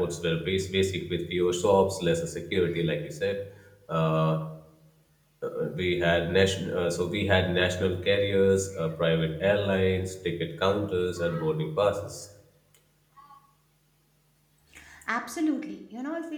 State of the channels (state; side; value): identical; both; correlation 1.00